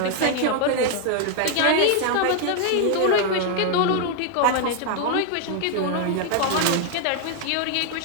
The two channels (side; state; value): both; different; correlation 0.00